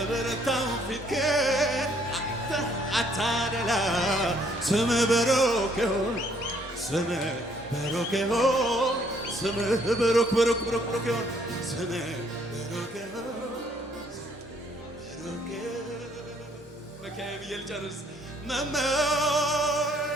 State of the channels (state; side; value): normal; both; correlation 0.65